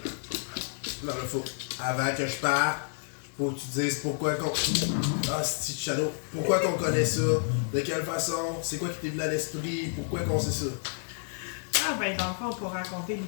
Non, mais faut, avant que je parte, faut que tu dises pourquoi qu'on... Ah, c'est Shadow. Pourquoi qu'on connaît ça? De quelle façon? C'est quoi qui t'est venu à l'esprit? Pourquoi qu'on sait ça? Ah ben, dans le fond, pour raconter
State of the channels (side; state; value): right; silent; digital silence